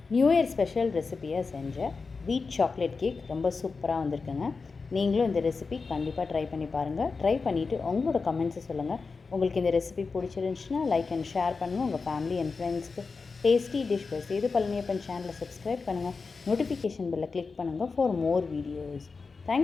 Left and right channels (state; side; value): quieter; right; 4.5 dB